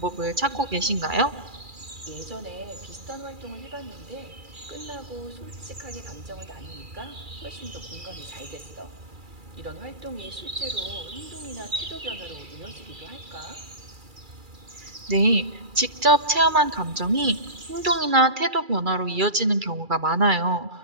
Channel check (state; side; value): late; left; 2.3 ms